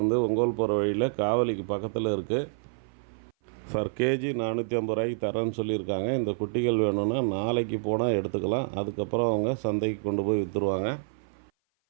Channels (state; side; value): silent; left; 56 dB below the other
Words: ஒங்கோல் போகிற வழியில் காவலிக்கு பக்கத்தில் இருக்குது. ஃபர் கேஜி 450 ரூபாய்க்கு தரேன்னு சொல்லியிருக்காங்க. இந்த குட்டிகள் வேணும்னா நாளைக்கு போனால் எடுத்துக்கலாம். அதுக்கப்புறம் அவங்க சந்தைக்கு கொண்டு போய் விற்றுருவாங்க.